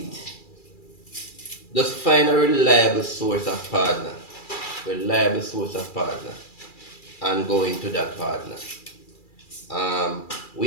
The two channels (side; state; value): right; late; 2.3 ms